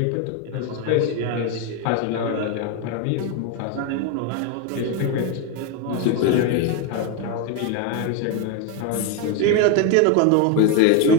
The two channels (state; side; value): different; both; correlation 0.02